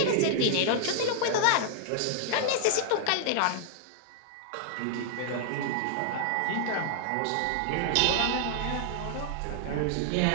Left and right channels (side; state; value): both; different; correlation -0.01